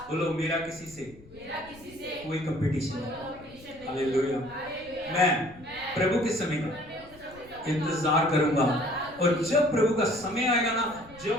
बोलो मेरा किसी से कोई कंपटीशन नहीं। हालेलुया। मैं प्रभु के समय का इंतजार करूंगा। और जब प्रभु का समय आएगा ना,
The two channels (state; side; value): noise; left; rumble, 23 dB below the sound